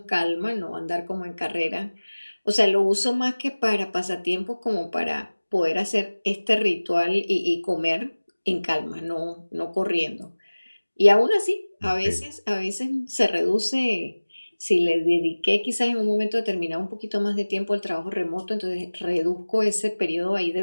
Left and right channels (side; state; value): both; inverted; correlation -1.00